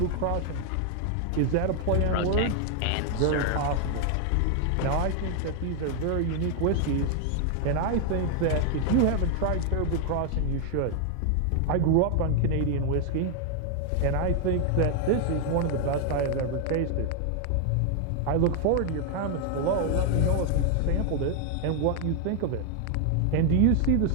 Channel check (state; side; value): different; both; correlation 0.00